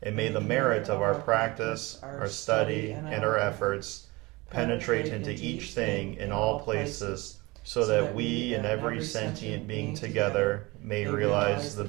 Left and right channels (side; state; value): left; quieter; 23.3 dB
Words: and may the merit of our practice, our study, and our efforts penetrate into each thing in all places, so that we and every sentient being together may realize the